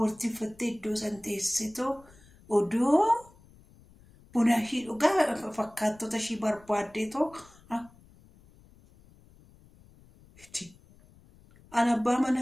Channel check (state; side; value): noise; left; rumble, 26 dB below the sound